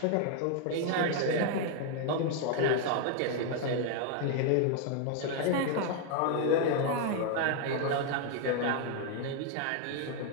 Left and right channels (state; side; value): different; both; correlation 0.00